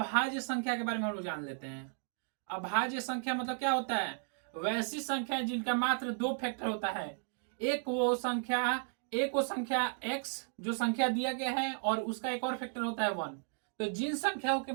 संख्या के बारे में हम लोग जान लेते हैं। अभाज्य संख्या मतलब क्या होता है? वैसी संख्या जिनका मात्र दो फैक्टर होता है। एक वो संख्या x जो संख्या दिया गया है और उसका एक और फैक्टर होता है 1। तो जिन संख्याओं के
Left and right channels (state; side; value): silent; left; 55 dB below the other